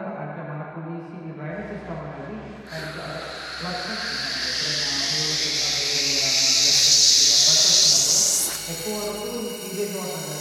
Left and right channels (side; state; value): both; identical; correlation 1.00